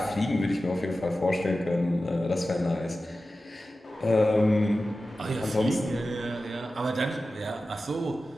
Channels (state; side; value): normal; both; correlation 0.94